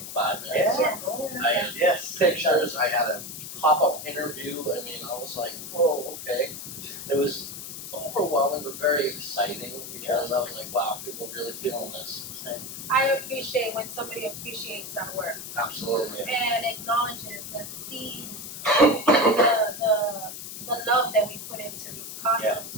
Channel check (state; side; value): noise; left; hiss, 9 dB below the sound